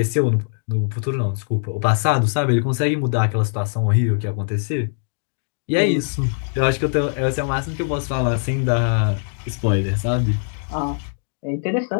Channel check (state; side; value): silent; right; digital silence